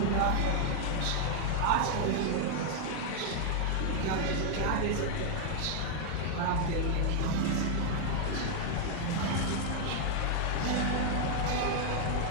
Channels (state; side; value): different; both; correlation 0.00